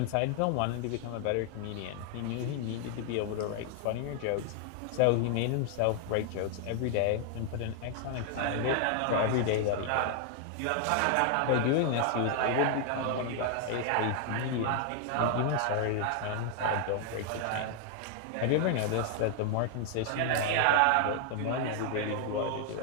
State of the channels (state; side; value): different; both; correlation 0.00